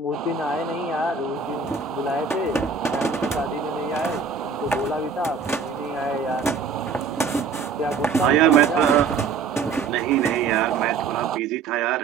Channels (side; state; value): left; quieter; 5.3 dB